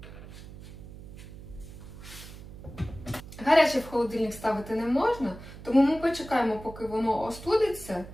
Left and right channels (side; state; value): right; noise; hum, 15 dB below the sound